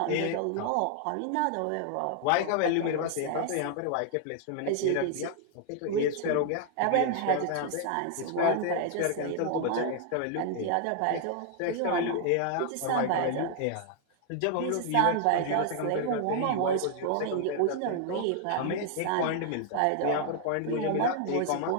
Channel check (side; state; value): both; different; correlation 0.00